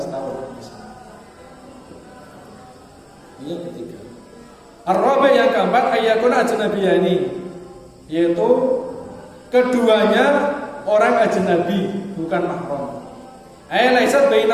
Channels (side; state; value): both; identical; correlation 1.00